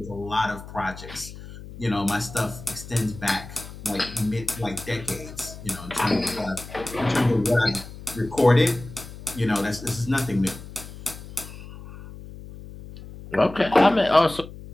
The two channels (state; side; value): noise; left; hum, 14 dB below the sound